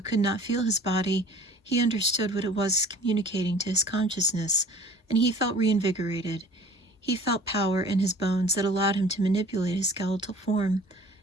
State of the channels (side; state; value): both; normal; correlation 0.48